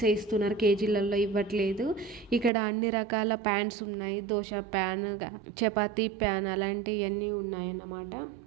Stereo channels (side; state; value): left; drops out; at 2.5 s